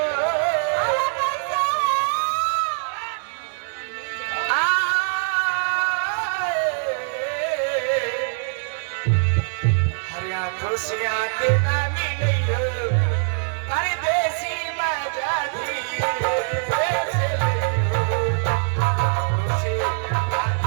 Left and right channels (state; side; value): silent; left; digital silence